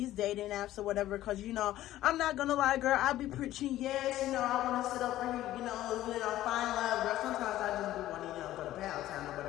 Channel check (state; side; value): quieter; right; 14.2 dB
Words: dating apps or whatever. Because, you know, I'm not going to lie, girl. I be preaching, yes, you know, I want to sit over here, you know, find love, girl. Sometimes I just be wanting, you know, go to Pound Town or